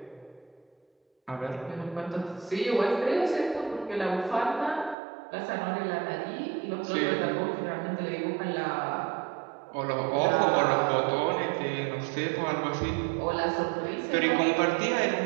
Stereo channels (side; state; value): left; drops out; at 5.0 s